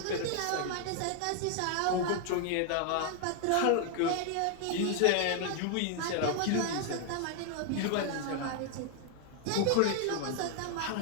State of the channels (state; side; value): different; both; correlation 0.00